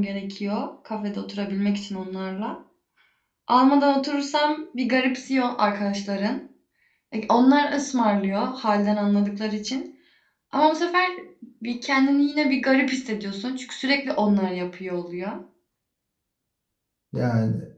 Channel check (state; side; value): identical; both; correlation 1.00